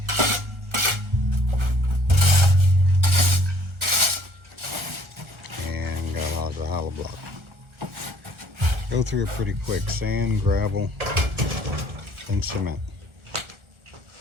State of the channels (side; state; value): left; late; 1.4 ms